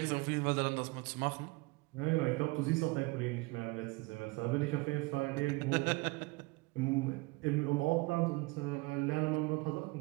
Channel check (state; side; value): quieter; left; 25.0 dB